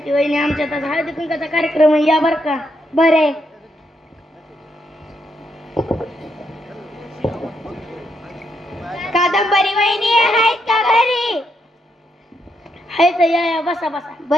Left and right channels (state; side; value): normal; both; correlation 0.78